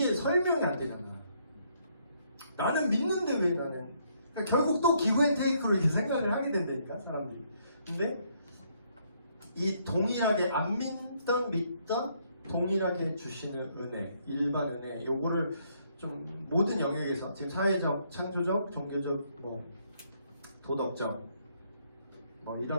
설명이 안 되잖아. 나는 믿는데 왜 나는? 그러니까 결국 또 기브 앤 테이크로 이렇게 생각을 하게 된다니까, 사람들이. 근데 이 동일하게 안 믿던 동일하게 주시는 은혜, 일반 은혜, 요거를 좀 모든 영역에서 지금 사회적, 창조적, 종교적, 도덕적,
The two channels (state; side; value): inverted; both; correlation -0.70